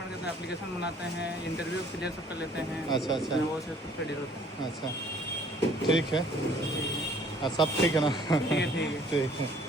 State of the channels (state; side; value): normal; both; correlation 0.57